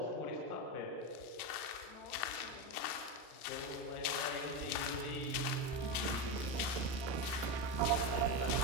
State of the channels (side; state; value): right; late; 1.3 ms